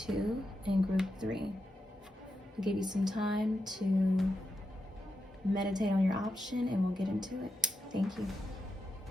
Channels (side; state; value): both; normal; correlation 0.87